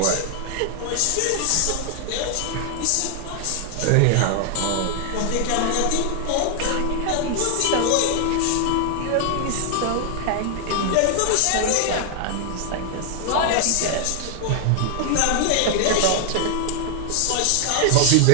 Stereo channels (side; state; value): both; different; correlation 0.00